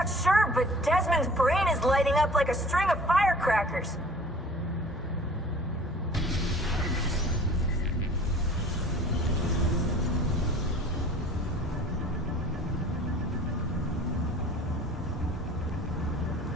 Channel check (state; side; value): normal; both; correlation 0.47